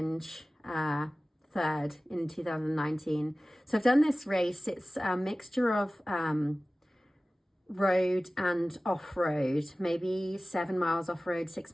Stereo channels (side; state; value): both; normal; correlation 0.97